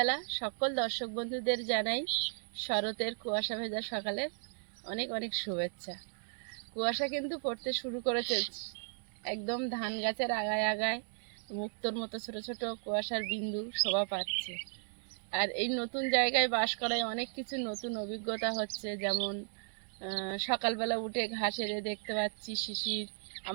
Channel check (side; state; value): left; silent; digital silence